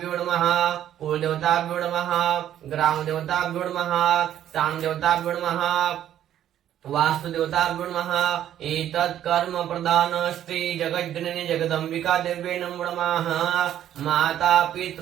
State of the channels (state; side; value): quieter; left; 11.2 dB